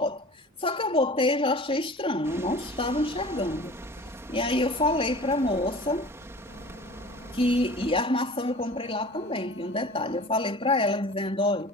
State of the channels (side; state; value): both; normal; correlation 0.41